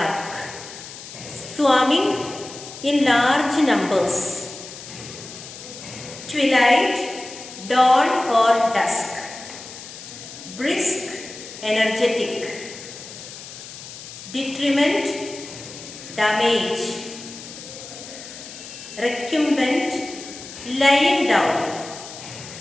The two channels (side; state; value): left; noise; hiss, 13 dB below the sound